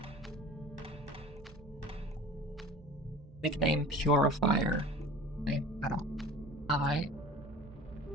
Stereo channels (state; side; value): noise; right; hum, 20 dB below the sound